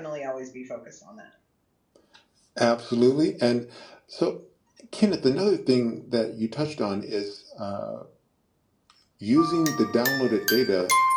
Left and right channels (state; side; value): identical; both; correlation 1.00